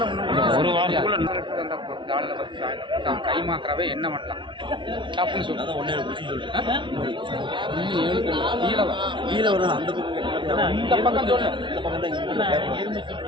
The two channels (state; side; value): late; left; 0.24 ms